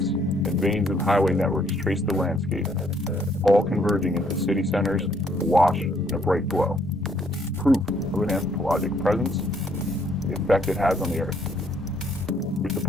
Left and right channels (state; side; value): normal; both; correlation 0.67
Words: and veins of highway networks trace the landscape, all converging into city centers, awash in a bright glow. Proof of an anthropologic presence, the effect it has on the Earth. With the